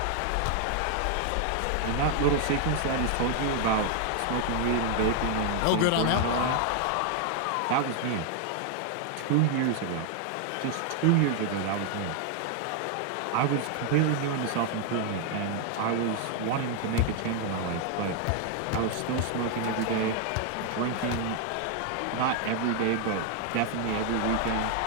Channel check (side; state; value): both; different; correlation 0.00